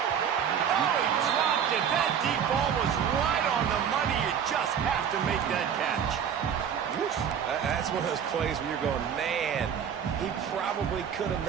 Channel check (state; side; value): quieter; left; 8.1 dB